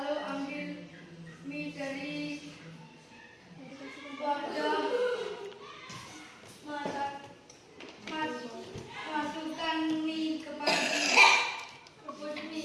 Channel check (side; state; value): both; identical; correlation 1.00